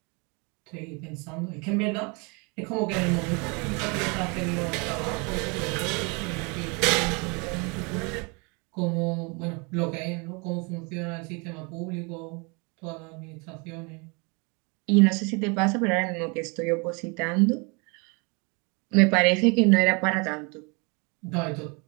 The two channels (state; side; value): quieter; left; 31.1 dB